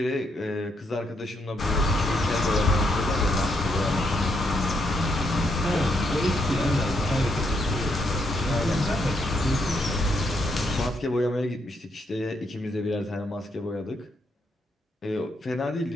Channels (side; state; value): both; normal; correlation 0.76